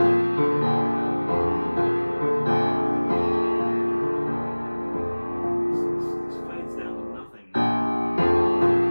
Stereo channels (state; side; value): inverted; both; correlation -1.00